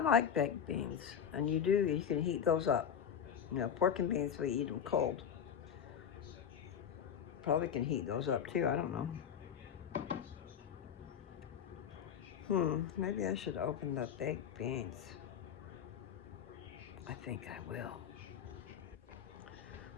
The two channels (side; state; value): right; quieter; 8.2 dB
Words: baked beans. And you can heat those up. You know, pork and beans, we eat them cold. Probably can heat those up too, I don't know. Maybe I should open the baked beans. I think I will.